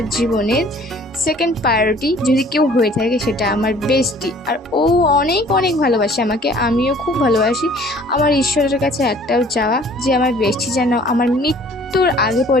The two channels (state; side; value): normal; both; correlation 0.53